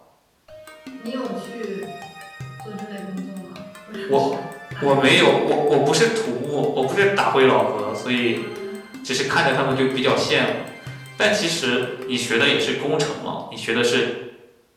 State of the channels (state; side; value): identical; both; correlation 1.00